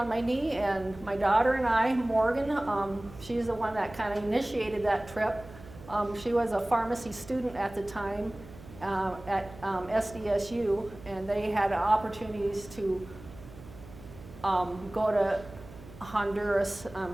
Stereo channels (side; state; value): right; noise; hum, 18 dB below the sound